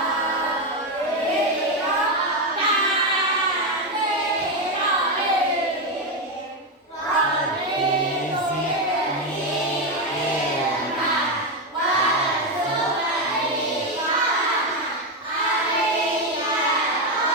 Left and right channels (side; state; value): both; normal; correlation 0.08